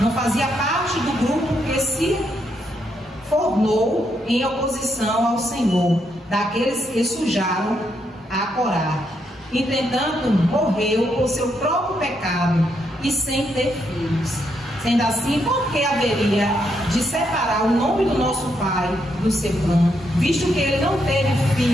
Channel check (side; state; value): both; normal; correlation 0.78